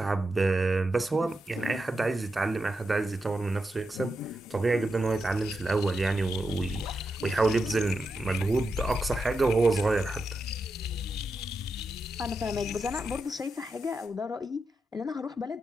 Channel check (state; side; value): normal; both; correlation 0.87